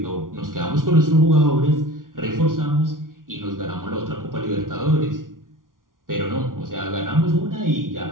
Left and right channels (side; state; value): left; late; 0.90 ms